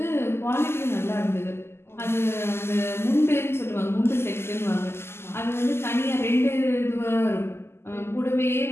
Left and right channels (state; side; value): late; right; 0.12 ms